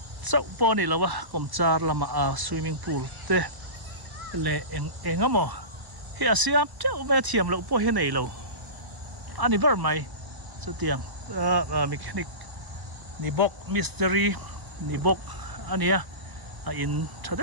chau po ni lawa kom char lama swimming pool te le engamo hi asiam chau me thiam lo po he nei lo ani ber mai chu tiang mechanic ni bok mystery ni bok ania in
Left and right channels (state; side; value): late; left; 1.0 ms